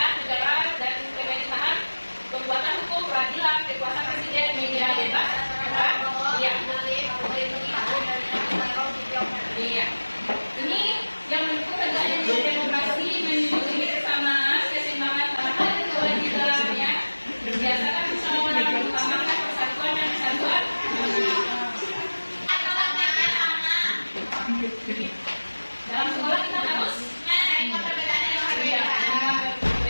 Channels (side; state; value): both; inverted; correlation -1.00